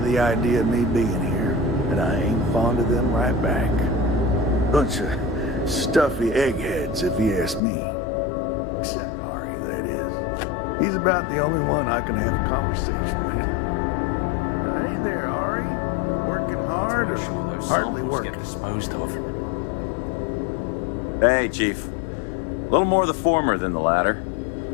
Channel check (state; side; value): drops out; right; at 7.6 s